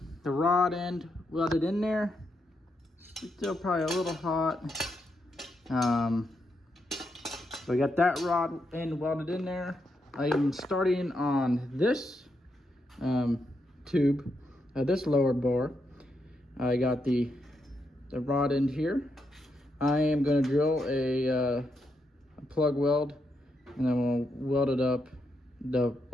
rod end welded in there. Still probably a little hot. So I got that rod end welded in there. I am starting on this tube, this lower bar. I got the rod end here. I am going to drill a plug weld, and then we'll weld it up,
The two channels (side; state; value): both; normal; correlation 0.81